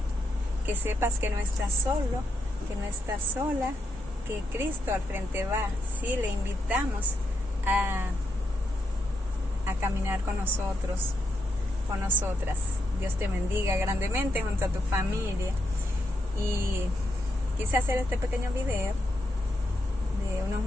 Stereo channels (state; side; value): normal; both; correlation 0.81